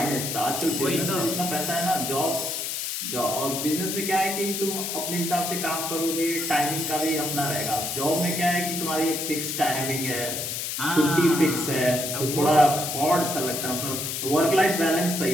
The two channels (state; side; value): noise; left; hiss, 3 dB below the sound